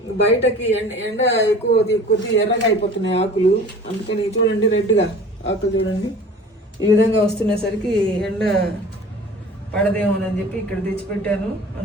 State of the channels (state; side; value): normal; both; correlation 0.42